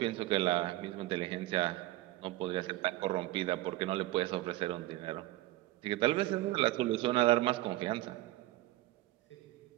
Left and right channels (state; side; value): quieter; left; 17.2 dB